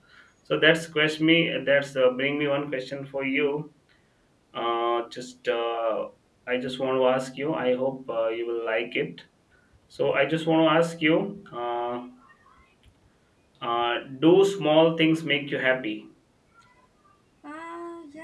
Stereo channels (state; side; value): identical; both; correlation 1.00